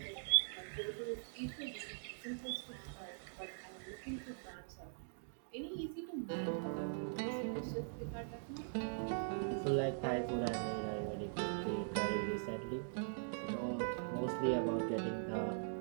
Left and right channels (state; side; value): silent; left; digital silence